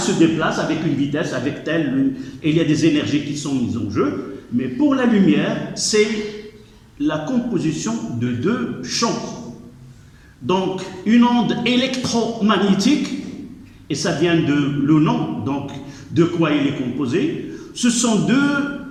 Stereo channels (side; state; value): both; identical; correlation 1.00